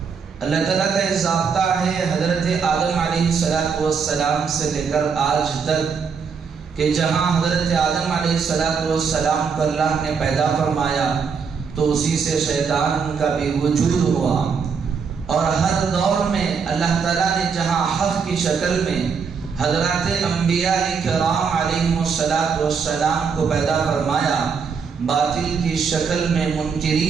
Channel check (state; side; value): quieter; left; 5.9 dB